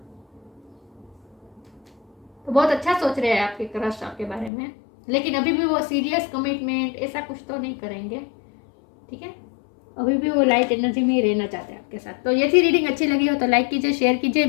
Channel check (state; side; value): drops out; right; at 4.5 s